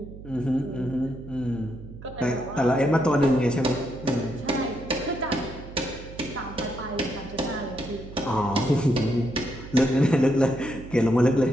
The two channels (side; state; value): right; noise; hum, 14 dB below the sound